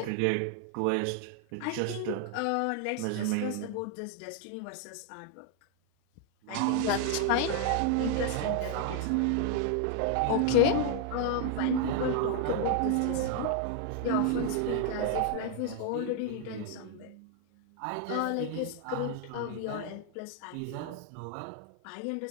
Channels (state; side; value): different; both; correlation 0.00